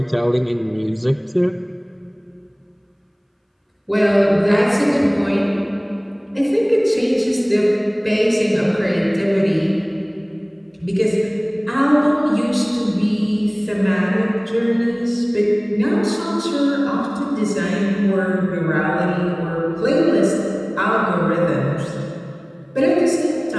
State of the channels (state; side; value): identical; both; correlation 1.00